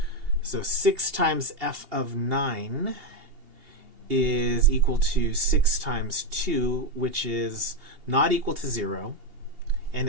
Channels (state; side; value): late; left; 2.8 ms